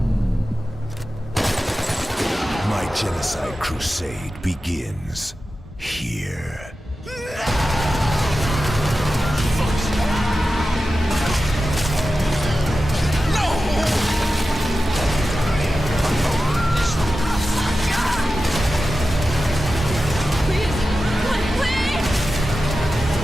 My genocide crusade begins here.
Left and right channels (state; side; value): normal; both; correlation 0.93